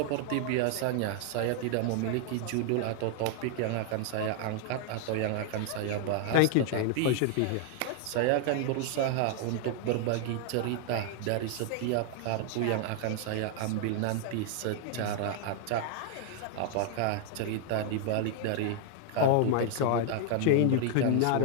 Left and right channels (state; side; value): different; both; correlation 0.00